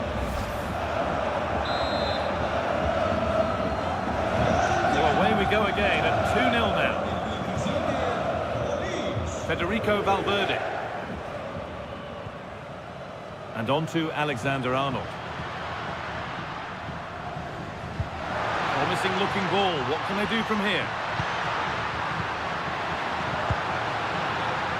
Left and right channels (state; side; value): identical; both; correlation 1.00